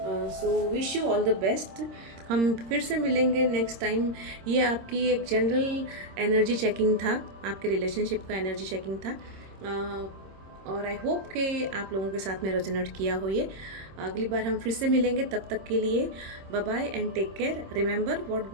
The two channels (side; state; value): left; late; 26 ms